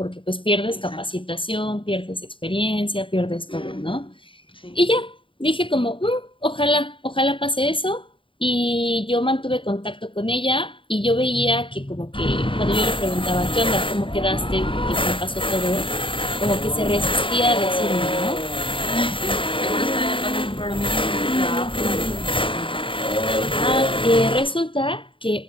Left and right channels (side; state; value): right; late; 0.25 ms